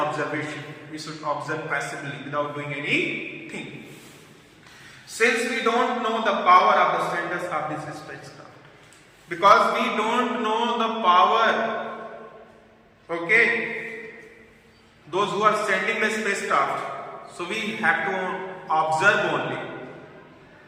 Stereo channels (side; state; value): both; identical; correlation 1.00